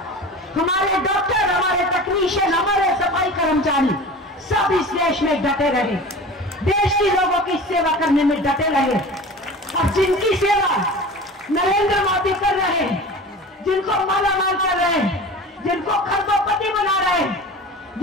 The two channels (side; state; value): both; normal; correlation 0.36